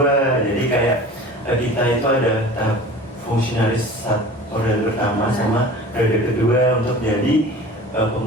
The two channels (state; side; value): normal; both; correlation 0.40